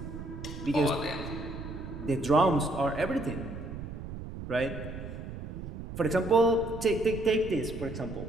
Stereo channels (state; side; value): noise; right; rumble, 9 dB below the sound